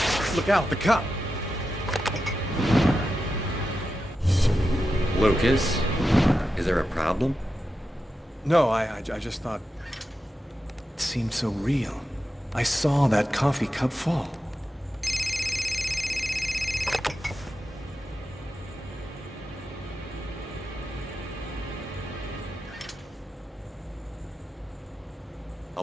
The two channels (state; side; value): normal; both; correlation 0.90